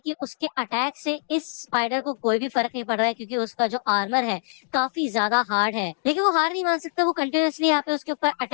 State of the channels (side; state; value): right; silent; digital silence